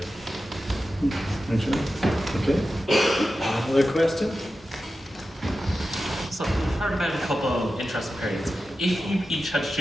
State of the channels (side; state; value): both; normal; correlation 0.92